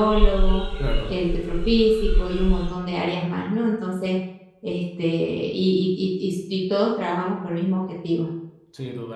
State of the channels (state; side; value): identical; both; correlation 1.00